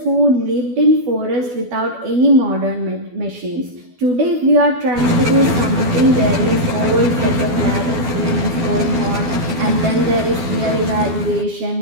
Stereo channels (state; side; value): late; left; 12 ms